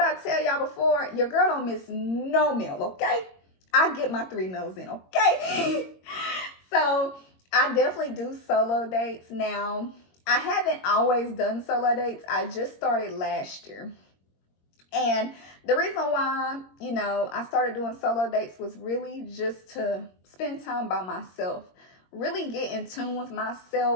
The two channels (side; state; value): right; late; 22 ms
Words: tell y'all before, your girl don't miss no meal, okay? I get my 3 meals in, okay? So I definitely do solo dates now. I haven't always done solo dates. I just started last year. And the reason why, I started doing solo dates was really just to spend time by myself, really get in tune with